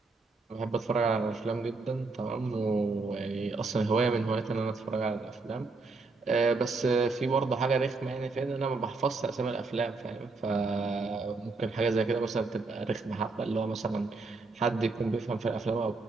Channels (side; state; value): left; quieter; 3.8 dB